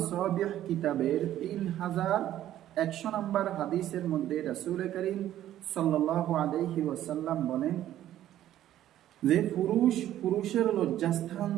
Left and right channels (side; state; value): left; quieter; 12.5 dB